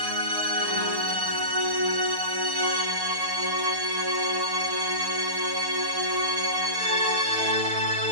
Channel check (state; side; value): late; left; 6.5 ms